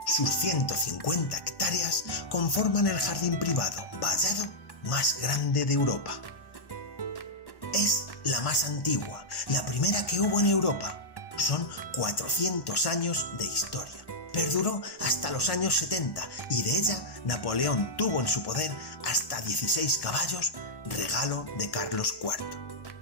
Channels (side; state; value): right; late; 1.1 ms